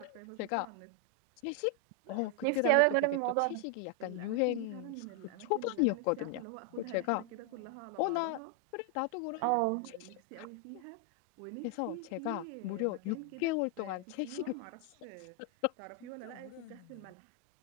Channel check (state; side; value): different; both; correlation 0.00